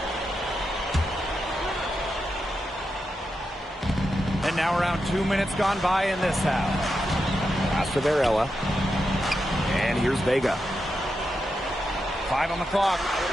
And now around 2 minutes gone by in this half. Pass to Varela. And here's Vega. 5 on the clock.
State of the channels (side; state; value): both; normal; correlation 0.87